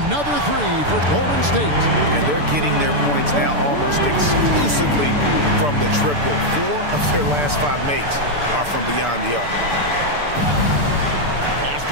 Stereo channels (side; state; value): left; late; 6.9 ms